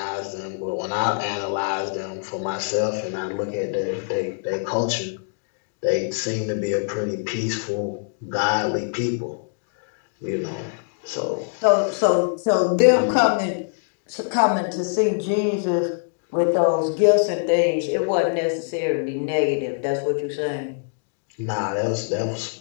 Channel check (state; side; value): silent; right; digital silence